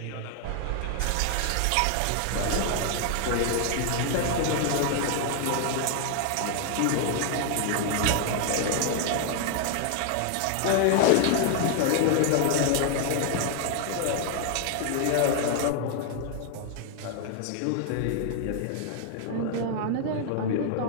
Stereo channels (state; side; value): different; both; correlation 0.00